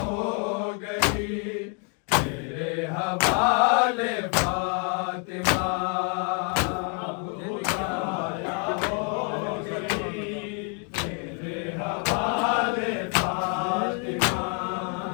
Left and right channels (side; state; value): right; quieter; 39.5 dB